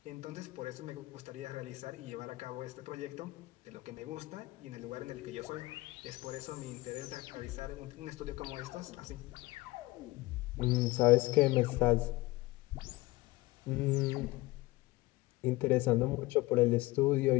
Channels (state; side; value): quieter; right; 20.3 dB